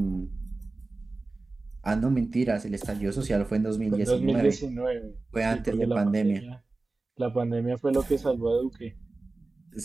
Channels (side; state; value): left; quieter; 3.3 dB